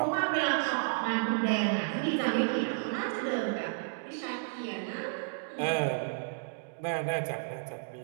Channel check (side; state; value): left; silent; digital silence